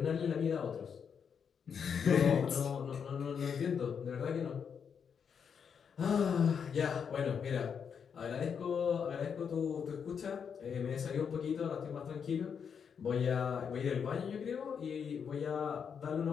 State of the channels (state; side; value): quieter; right; 7.0 dB